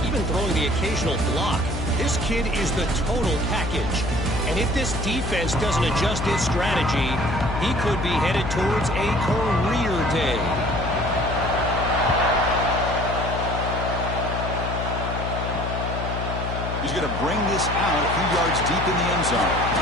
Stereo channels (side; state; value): left; noise; hum, 4 dB below the sound